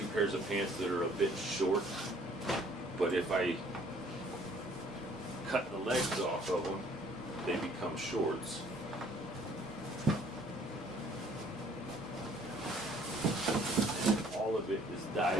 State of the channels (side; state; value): both; normal; correlation 0.58